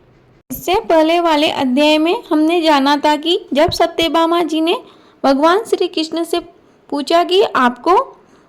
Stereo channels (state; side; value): identical; both; correlation 1.00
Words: इससे पहले वाले अध्याय में हमने जाना था कि जब सत्यभामा जी ने भगवान श्री कृष्ण से पूछा कि आपको